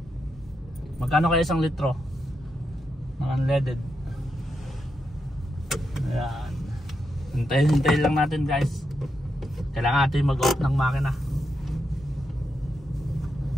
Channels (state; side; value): normal; both; correlation 0.84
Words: Magkano kaya isang litro ng unleaded? Ayan, hintayin lang natin guys. Kailangan natin mag-off ng makina.